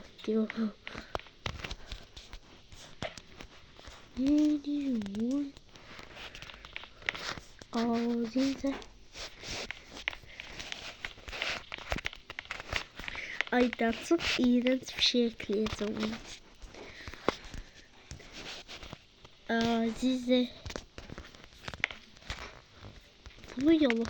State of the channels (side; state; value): both; identical; correlation 1.00